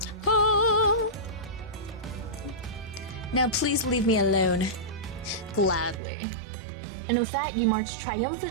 Oh. Now please leave me alone. Gladly. And with that, you march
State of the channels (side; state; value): left; drops out; at 6.0 s